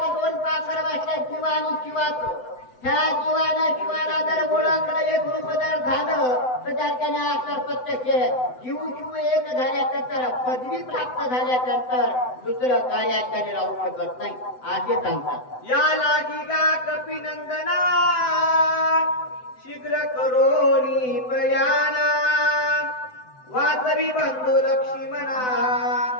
2 पाखर बसल्या जीवा आणि शिवाचं. ह्या जीवानं शिवाला जर ओळखलं एक रूप जर झालं तर त्याच्याने आकार प्रत्यक्ष जीव शिव एक झाल्यानंतर पदवी प्राप्त झाल्यानंतर दुसरं कार्याकडे राहू शकत नाही असे सांगतात. या लागी गा कपिनंदना शीघ्र करोनी प्रयाणा वाचवी बंधू लक्ष्मणा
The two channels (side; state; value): right; late; 7.9 ms